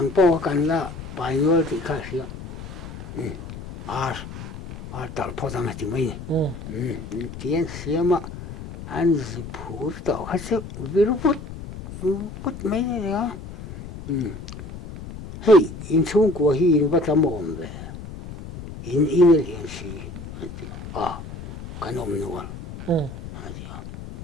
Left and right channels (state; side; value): noise; left; rumble, 12 dB below the sound